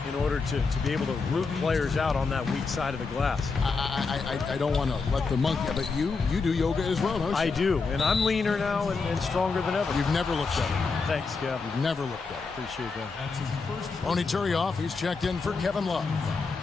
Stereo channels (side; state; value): right; quieter; 4.5 dB